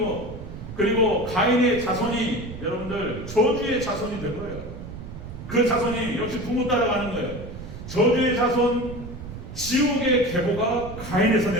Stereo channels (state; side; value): noise; right; rumble, 11 dB below the sound